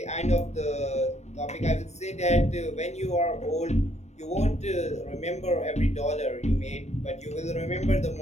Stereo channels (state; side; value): late; right; 0.32 ms